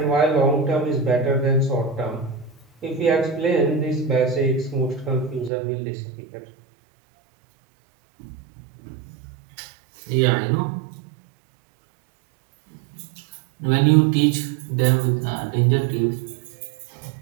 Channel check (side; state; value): left; drops out; at 5.5 s